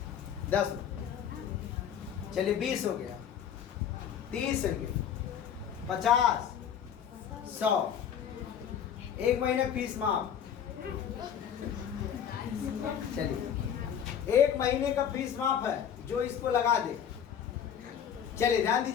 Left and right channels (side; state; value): right; quieter; 8.7 dB